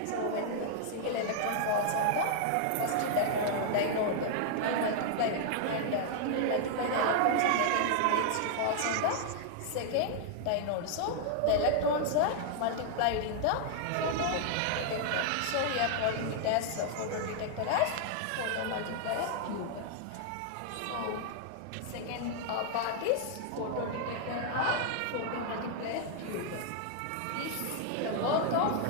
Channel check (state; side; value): different; both; correlation -0.01